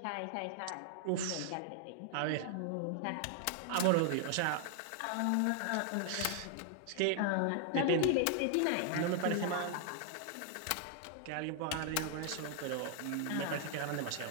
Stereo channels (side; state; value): both; different; correlation 0.00